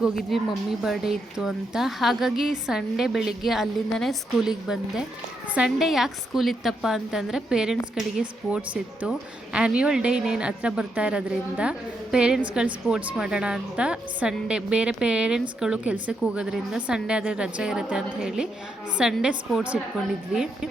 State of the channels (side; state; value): both; normal; correlation 0.80